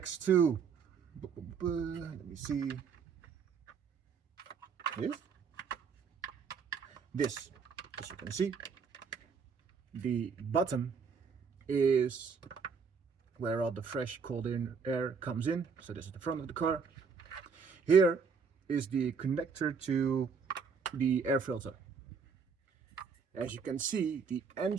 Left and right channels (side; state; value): left; quieter; 5.8 dB